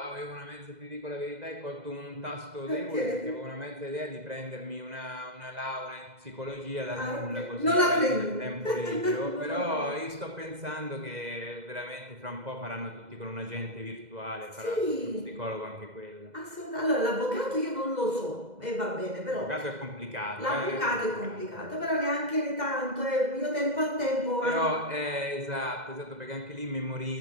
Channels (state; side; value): late; left; 2.0 ms